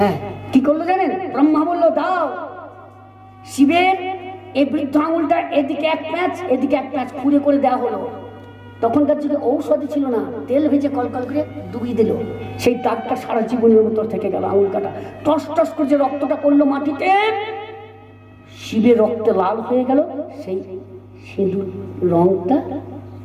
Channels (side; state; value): both; identical; correlation 1.00